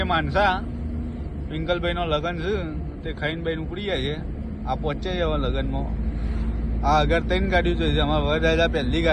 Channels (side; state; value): both; identical; correlation 1.00